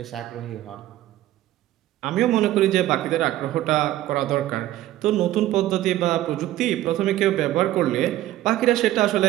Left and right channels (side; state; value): left; quieter; 14.5 dB